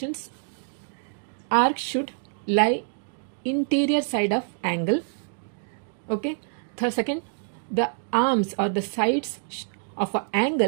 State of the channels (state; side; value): silent; left; digital silence